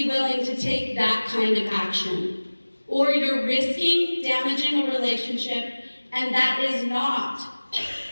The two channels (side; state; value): both; inverted; correlation -1.00